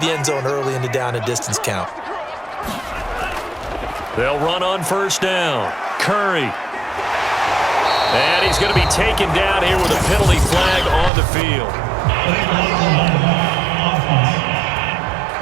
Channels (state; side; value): drops out; left; at 11.1 s